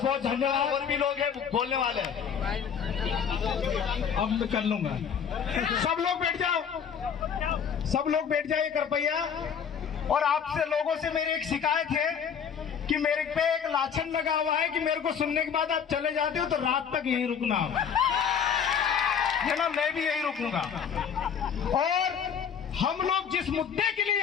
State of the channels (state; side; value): quieter; right; 7.4 dB